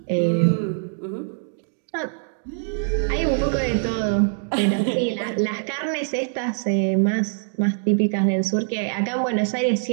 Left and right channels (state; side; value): silent; left; digital silence